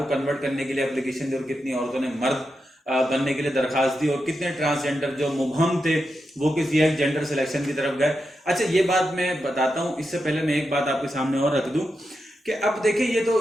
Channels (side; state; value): both; normal; correlation 0.87